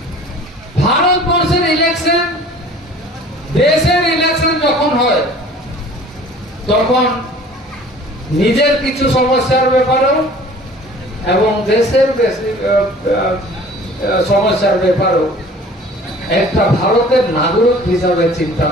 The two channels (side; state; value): both; normal; correlation 0.47